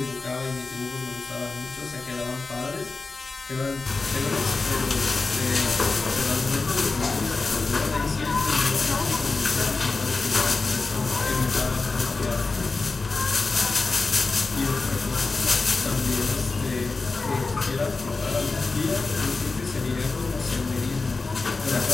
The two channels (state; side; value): quieter; right; 3.9 dB